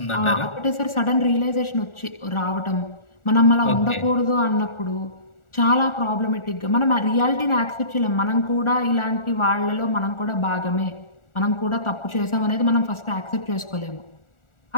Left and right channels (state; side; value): late; right; 1.4 ms